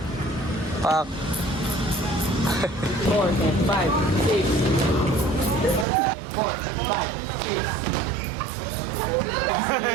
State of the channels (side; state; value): left; drops out; at 5.9 s